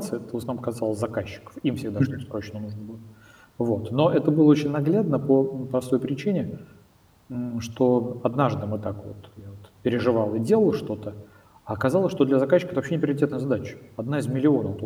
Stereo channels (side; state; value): both; identical; correlation 1.00